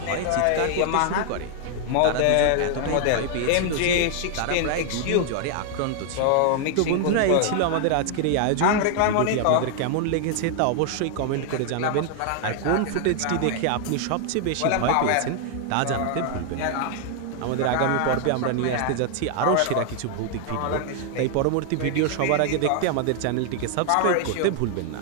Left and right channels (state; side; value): different; both; correlation 0.00